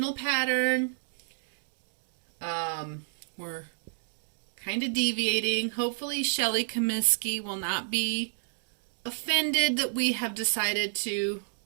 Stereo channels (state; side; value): silent; left; digital silence